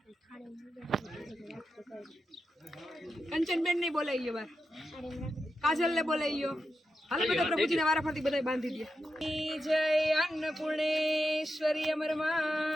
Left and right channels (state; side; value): normal; both; correlation 0.88